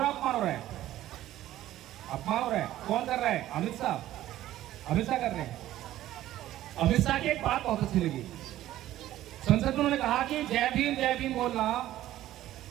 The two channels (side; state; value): left; quieter; 14.0 dB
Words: है, अपमान हो रहा है? अपमान हो रहा है। कौन कर रहा है? अमित शाह। अमित शाह कर रहे हैं। अमित शाह की एक बात बहुत अच्छी लगी, संसद में उन्होंने कहा कि जय भीम बोलना